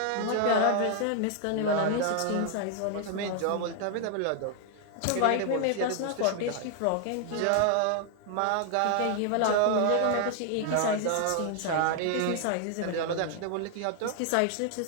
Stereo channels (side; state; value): both; different; correlation 0.00